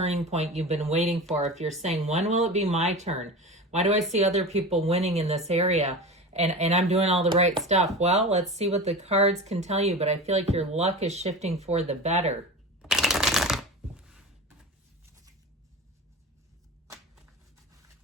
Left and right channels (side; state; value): both; normal; correlation 0.30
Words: point you've been waiting for. If you're saying, when will it be my turn? Why do I see other people winning in this area and I'm doing all the right stuff? Well, let's see what the cards can tell you, but I feel like your luck is shifting for the better.